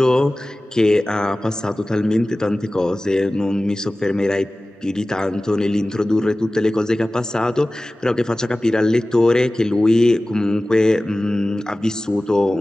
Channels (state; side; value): normal; both; correlation 0.97